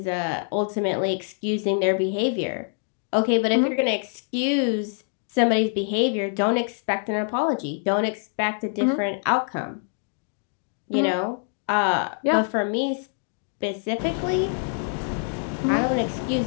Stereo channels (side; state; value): right; silent; 55 dB below the other